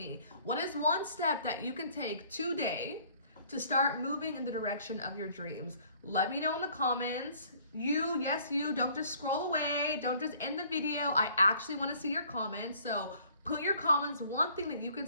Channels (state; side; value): inverted; both; correlation -0.57